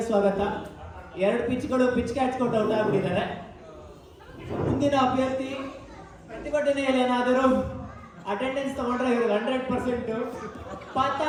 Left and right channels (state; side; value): identical; both; correlation 1.00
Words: ಸ್ವಾಗತ. 2 ಪಿಚ್ಗಳು ಪಿಚ್ ಕ್ಯಾಚ್ಕೊಂಡು ಔಟ್ ಆಗ್ಬಿಟ್ಟಿದ್ದಾರೆ. ಮುಂದಿನ ಅಭ್ಯರ್ಥಿ ಪ್ರತಿಭಟನೆಯಲ್ಲಿ ಏನಾದರೂ ಅಟೆಂಡೆನ್ಸ್ ತಗೊಂಡ್ರೆ ಇವ್ರಿಗೆ 100%.